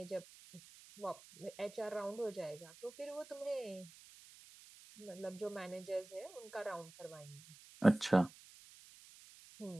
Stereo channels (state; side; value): noise; right; hiss, 20 dB below the sound